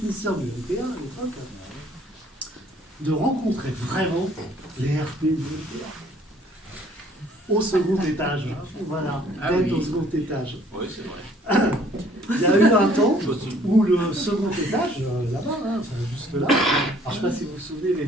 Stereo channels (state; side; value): normal; both; correlation 0.60